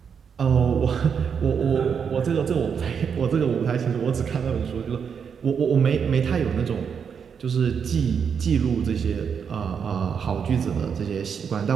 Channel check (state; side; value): quieter; left; 6.9 dB